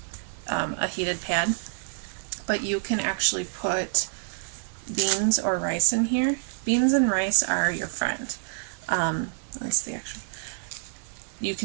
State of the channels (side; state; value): left; silent; 57 dB below the other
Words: heated pad, but you can actually put beans or rice in here. Beans and rice are your friend. That's the actual. You